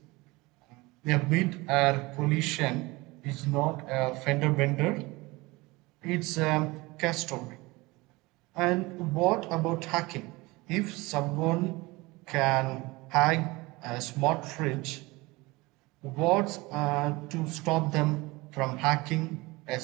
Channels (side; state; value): left; quieter; 22.6 dB